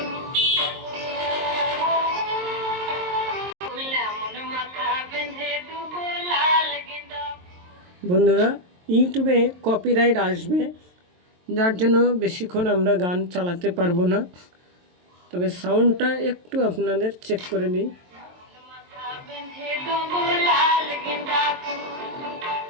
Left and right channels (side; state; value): left; late; 23 ms